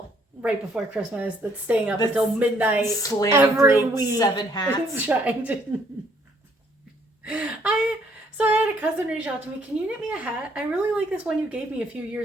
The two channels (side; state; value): both; normal; correlation 0.65